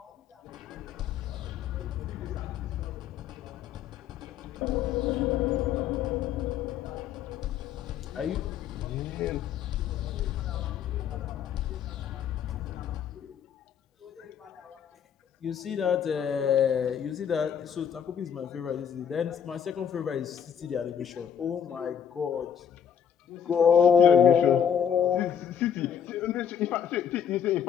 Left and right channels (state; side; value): quieter; right; 8.3 dB